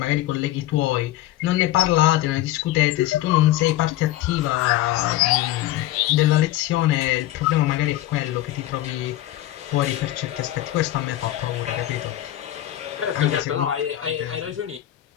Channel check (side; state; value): right; quieter; 14.7 dB